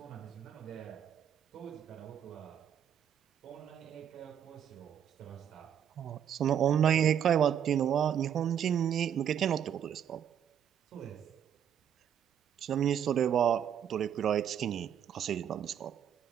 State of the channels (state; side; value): quieter; left; 9.2 dB